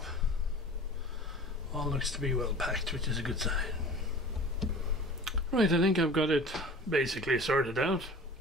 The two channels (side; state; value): both; normal; correlation 0.41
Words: All looks to be well packed, which is a good sign. Right, I think I've got it basically sorted out.